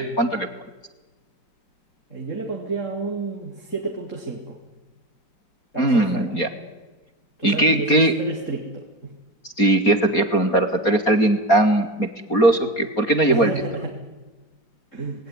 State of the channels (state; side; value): late; right; 4.2 ms